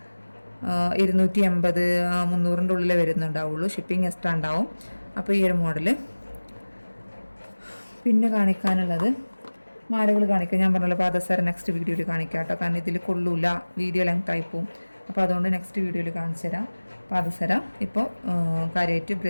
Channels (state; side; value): inverted; both; correlation -1.00